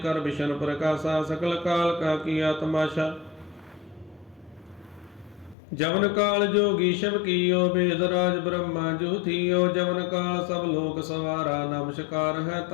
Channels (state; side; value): drops out; right; at 5.6 s